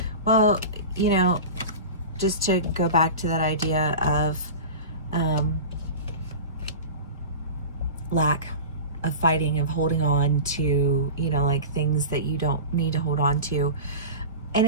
Well, you know, just to go back to that idea of lack of fighting, of holding on to, you know, like things that you don't need to hold on to. And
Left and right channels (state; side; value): inverted; both; correlation -0.30